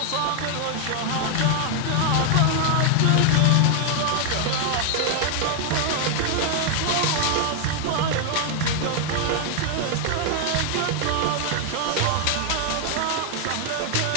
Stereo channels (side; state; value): both; different; correlation 0.00